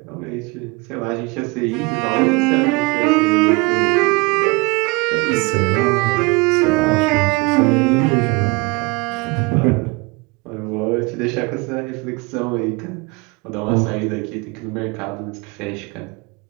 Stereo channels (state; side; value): quieter; left; 26.1 dB